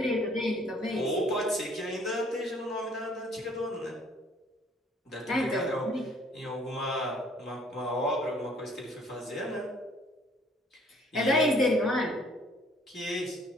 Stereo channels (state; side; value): normal; both; correlation 0.59